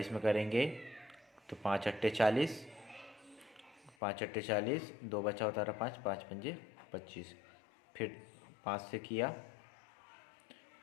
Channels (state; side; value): drops out; right; at 4.0 s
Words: में करेंगे तो 5 अट्टे 40, 5 अट्टे 40, 2 बचा उतारा 5, 5 पंजे 25। फिर 5 से किया,